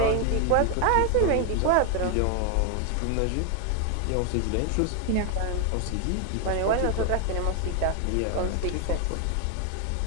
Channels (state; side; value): different; both; correlation 0.01